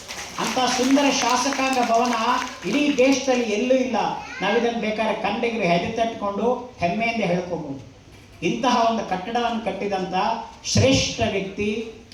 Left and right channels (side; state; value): both; identical; correlation 1.00